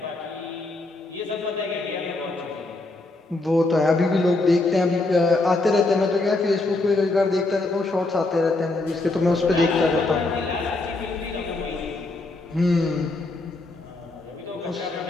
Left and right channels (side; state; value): right; quieter; 3.1 dB